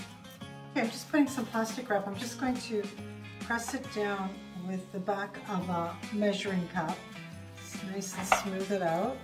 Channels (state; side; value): identical; both; correlation 1.00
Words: Okay, I'm just putting some plastic wrap. I'm just going to press it down with the back of a measuring cup. Just nice and smooth it out.